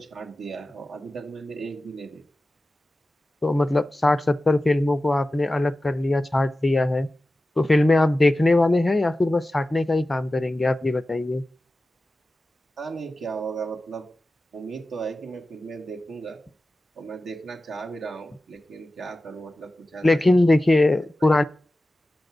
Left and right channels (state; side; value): normal; both; correlation 0.95